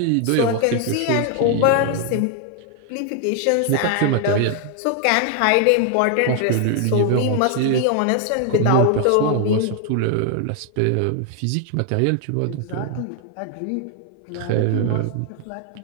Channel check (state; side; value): different; both; correlation 0.00